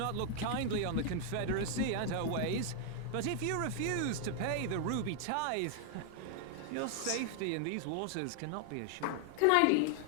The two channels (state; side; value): different; both; correlation 0.00